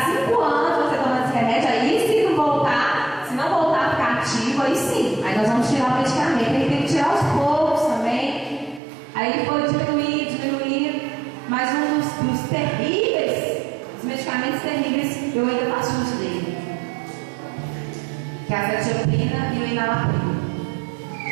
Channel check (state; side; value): drops out; left; at 8.8 s